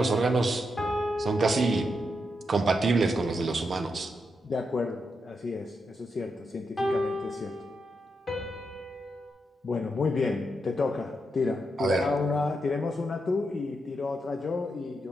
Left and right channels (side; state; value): both; normal; correlation 0.83